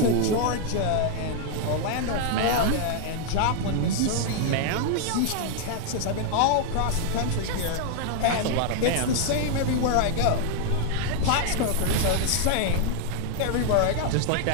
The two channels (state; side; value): different; both; correlation 0.00